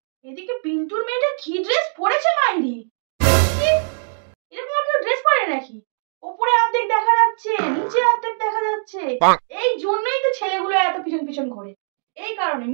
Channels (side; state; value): left; silent; digital silence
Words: এদিকে পিন্টুর মেয়েটা কি ড্রেস পরেছে মাইরি! এরকম আর কেউ ড্রেস পরে নাকি? উপরে অর্ধেক দেখা যাচ্ছে, নিচে অর্ধেক দেখা যাচ্ছে। এই জন্যই তো ছেলেগুলো এত পিছন পিছন ঘোরে, এই কারণে।